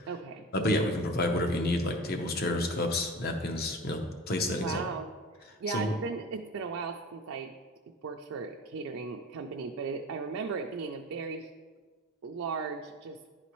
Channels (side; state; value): both; normal; correlation 0.36